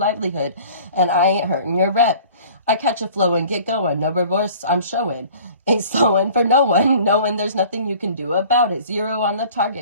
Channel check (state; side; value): inverted; both; correlation -0.48